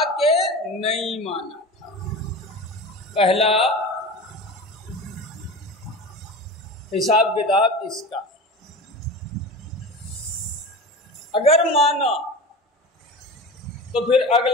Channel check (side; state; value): both; normal; correlation 0.31